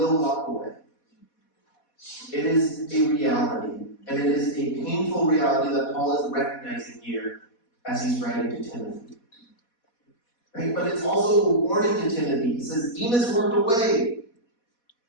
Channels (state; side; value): late; right; 4.1 ms